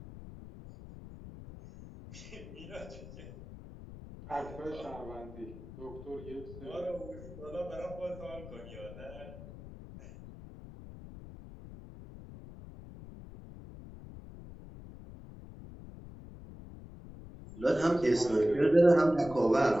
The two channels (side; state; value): left; noise; rumble, 14 dB below the sound